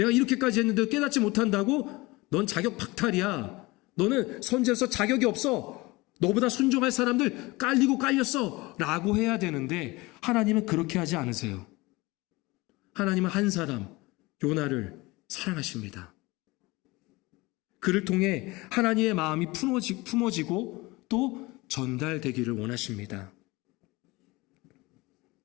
이렇게까지 했는데 깨닫지 못한다고? 넌 자격 박탈이야. 너는 선지자로서 자격이 없어. 너보다 순종할 사람들 깔리고 깔렸어. 라고 해야 되는데 하나님은 그렇게 하지 않으세요. 하나님은 한 사람, 요나를 사랑하십니다. 그를 통해 하나님의 마음이 품어지고 또 전달되기를 원하십니다.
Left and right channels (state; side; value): quieter; right; 22.4 dB